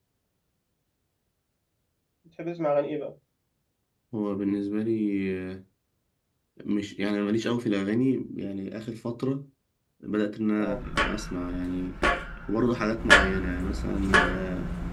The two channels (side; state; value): both; identical; correlation 1.00